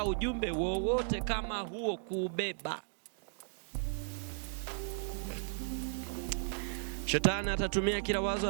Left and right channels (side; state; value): left; silent; 54 dB below the other